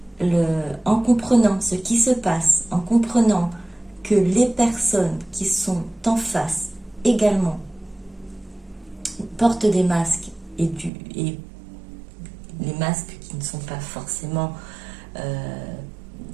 en comprenant ce qui se passe, en comprenant que les personnes qui sont en face également portent des masques et les masques qui ne sont pas forcément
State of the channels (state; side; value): drops out; left; at 10.9 s